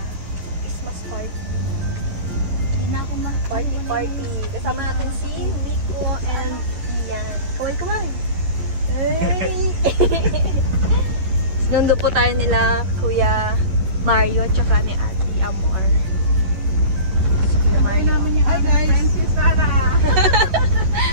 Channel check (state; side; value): late; left; 11 ms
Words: Christmas party. Hindi na ako party. Kasama natin si Miko and Ian. Kaway-kaway. Hey! Nundo po tayo nila Kuya Mario tsaka ni Ate Amor. Kuya Mario. Hi guys!